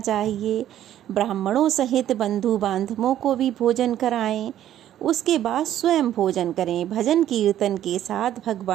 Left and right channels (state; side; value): quieter; left; 11.7 dB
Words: चाहिए। ब्राह्मणों सहित बंधु बांधवों को भी भोजन कराएं। उसके बाद स्वयं भोजन करें। भजन कीर्तन के साथ